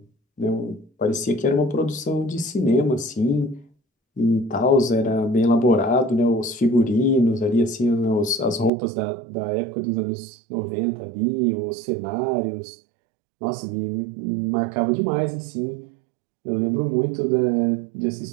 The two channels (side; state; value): left; drops out; at 8.7 s